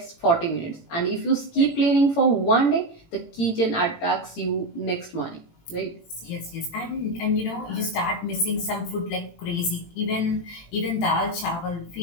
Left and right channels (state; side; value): late; right; 18 ms